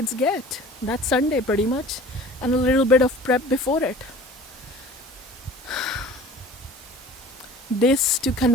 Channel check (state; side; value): normal; both; correlation 0.44